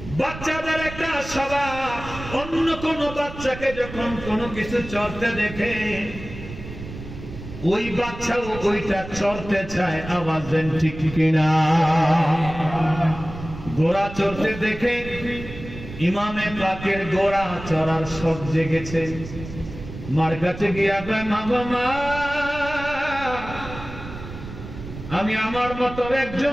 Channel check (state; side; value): noise; right; rumble, 12 dB below the sound